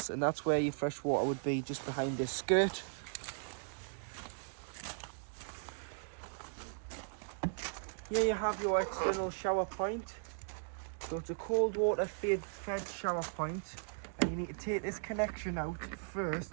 and that's where your fresh water would be, just behind this skirt. Here you have your external shower point. So it's a cold water fed shower point, and you need to take this connection out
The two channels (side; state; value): left; silent; digital silence